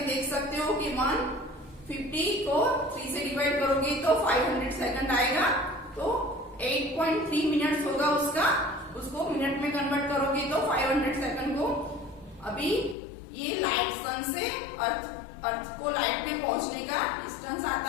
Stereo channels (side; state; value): right; drops out; at 13.0 s